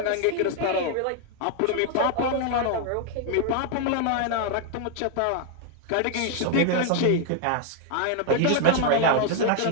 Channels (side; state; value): both; different; correlation 0.00